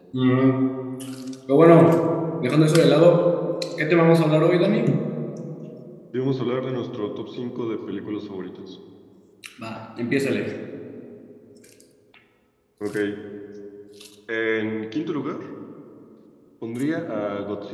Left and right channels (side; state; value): both; identical; correlation 1.00